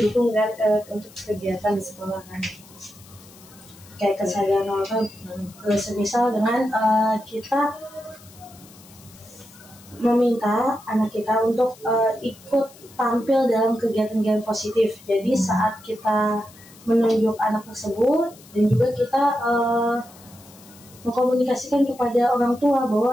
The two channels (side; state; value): left; noise; hiss, 23 dB below the sound